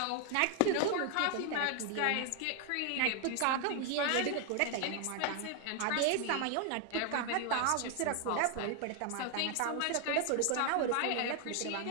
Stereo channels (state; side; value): different; both; correlation 0.01